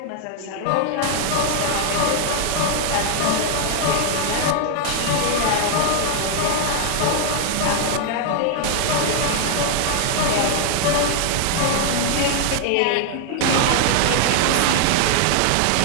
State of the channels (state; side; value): different; both; correlation 0.00